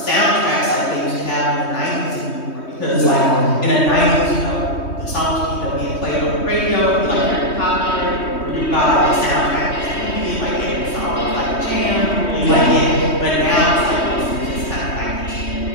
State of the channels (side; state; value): right; late; 3.2 ms